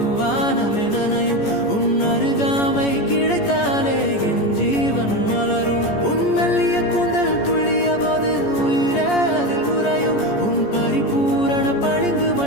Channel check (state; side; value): late; right; 14 ms